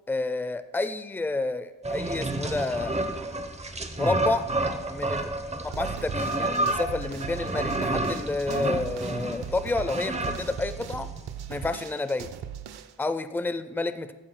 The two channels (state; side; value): normal; both; correlation 0.59